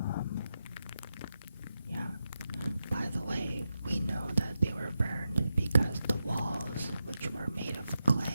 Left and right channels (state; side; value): inverted; both; correlation -0.89